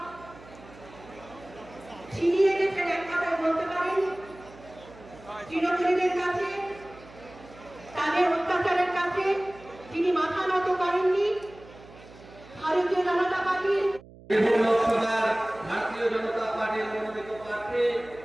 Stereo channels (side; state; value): right; noise; hum, 21 dB below the sound